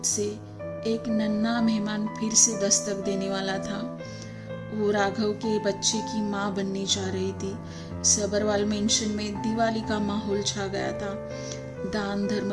से एक नन्हा मेहमान फिर से दस्तक देने वाला था। वो राघव के बच्चे की माँ बनने जा रही थी। सबरवाल मेंशन में दिवाली का माहौल छा गया था। दान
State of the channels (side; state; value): both; identical; correlation 1.00